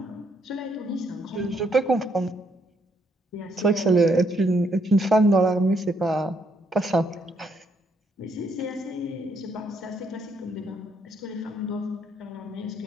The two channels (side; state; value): both; normal; correlation 0.72